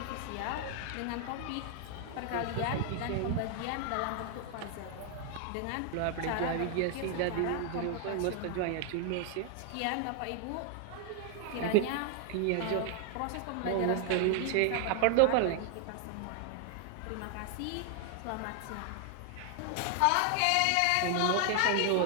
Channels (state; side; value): different; both; correlation 0.00